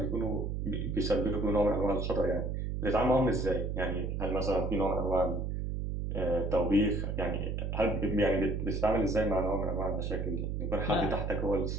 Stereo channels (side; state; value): right; noise; hum, 2 dB below the sound